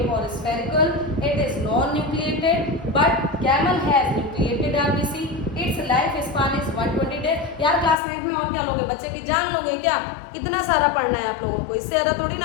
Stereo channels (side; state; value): right; drops out; at 8.0 s